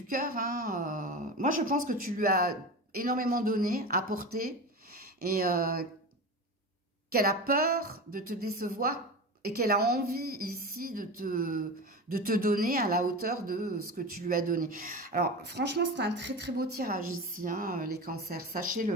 cœur, hein, moi je pense que tu lui as énormément donné, apporté, et qu'elle a peur de te décevoir et qu'elle a envie ici de te donner à la hauteur de ce que tu lui as donné. Alors franchement, c'est un très très beau tirage ici, hein, les cancers,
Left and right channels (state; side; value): normal; both; correlation 0.26